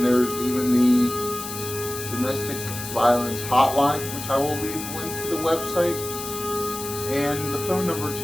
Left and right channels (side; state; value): left; noise; hiss, 8 dB below the sound